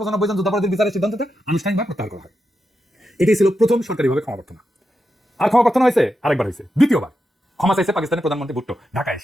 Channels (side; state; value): both; normal; correlation 0.87